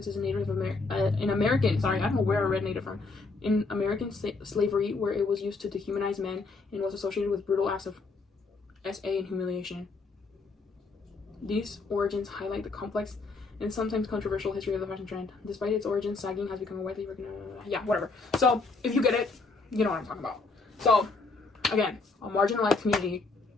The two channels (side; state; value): right; quieter; 3.9 dB